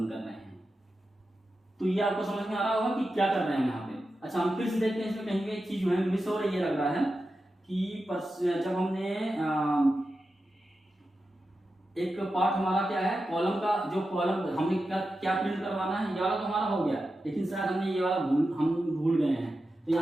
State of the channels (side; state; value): both; normal; correlation 0.91